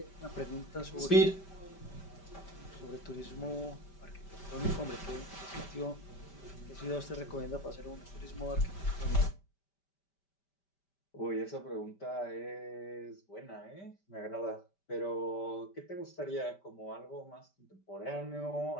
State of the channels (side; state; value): right; late; 5.1 ms